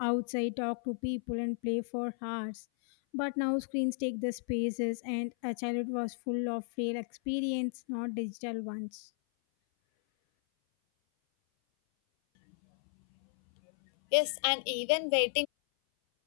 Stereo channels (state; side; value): silent; right; 55 dB below the other